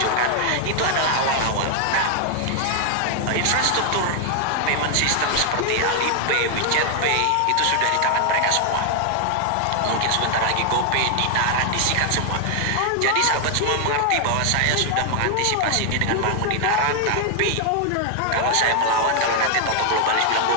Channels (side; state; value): both; different; correlation 0.00